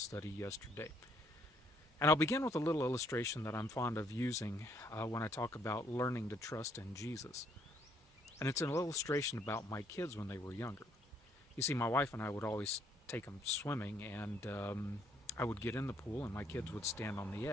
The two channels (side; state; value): both; normal; correlation 0.68